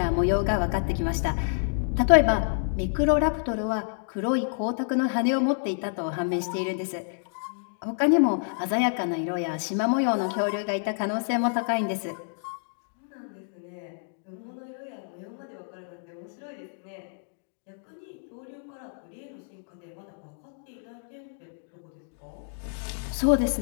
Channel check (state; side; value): silent; right; digital silence